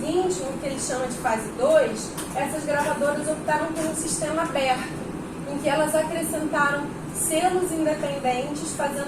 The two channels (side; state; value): both; identical; correlation 1.00